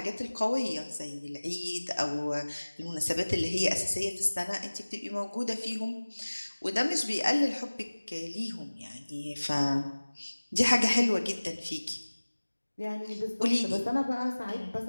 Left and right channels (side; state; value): both; inverted; correlation -1.00